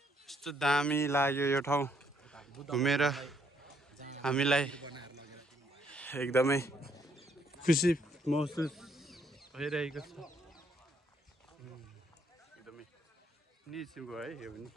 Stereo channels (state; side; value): normal; both; correlation 0.71